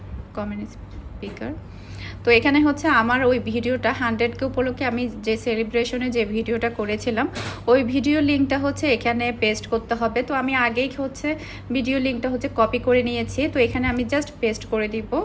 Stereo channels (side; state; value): both; identical; correlation 1.00